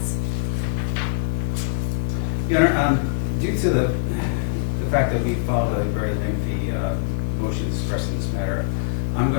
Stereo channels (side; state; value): right; silent; 64 dB below the other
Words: Your Honor, due to the fact that we filed a very lengthy motion to suppress in this matter, I'm